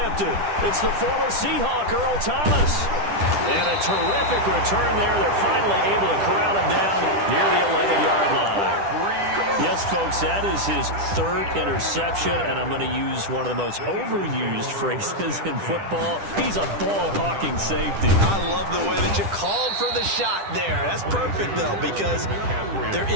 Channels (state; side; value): late; left; 10 ms